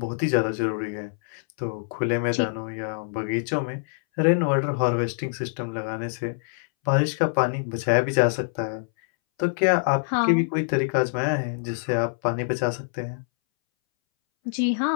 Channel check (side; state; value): right; silent; 62 dB below the other